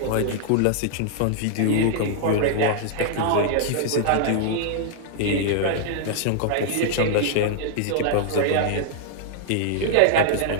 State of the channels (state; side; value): different; both; correlation -0.01